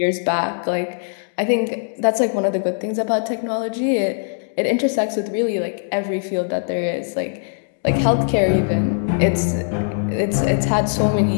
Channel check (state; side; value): silent; right; digital silence